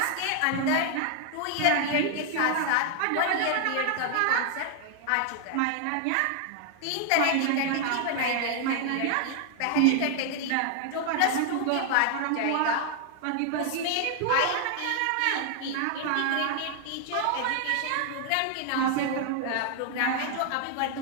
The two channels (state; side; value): different; both; correlation 0.00